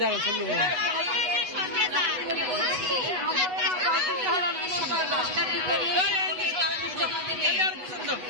দাঁড়ান শুনলো না।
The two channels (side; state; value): left; late; 8.1 ms